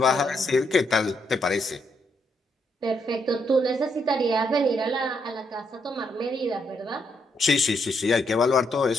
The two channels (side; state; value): both; normal; correlation 0.76